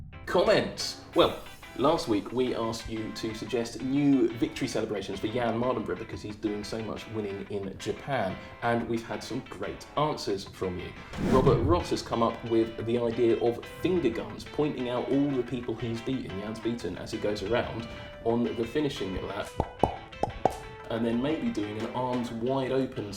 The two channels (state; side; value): identical; both; correlation 1.00